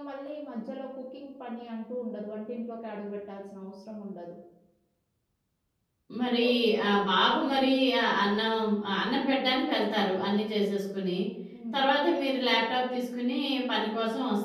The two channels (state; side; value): identical; both; correlation 1.00